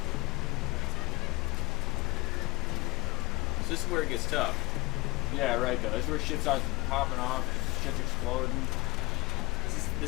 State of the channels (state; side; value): quieter; right; 22.9 dB